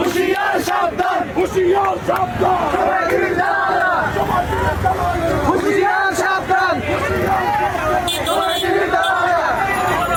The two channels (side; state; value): both; identical; correlation 1.00